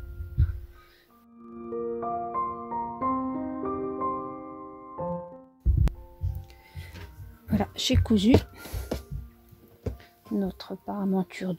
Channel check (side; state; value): both; identical; correlation 1.00